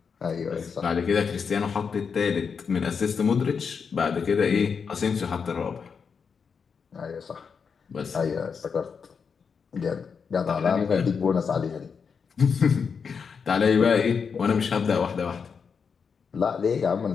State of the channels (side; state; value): right; quieter; 6.0 dB